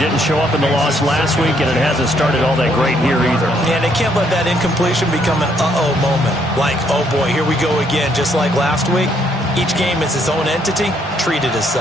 show up in the loss last week, and it hasn't started all that great here either. Yeah, they can't let that incompletion become an uh-oh moment. Like, oh boy, here we go again, just like last week. Each game is its own entity, treated as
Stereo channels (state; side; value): normal; both; correlation 0.70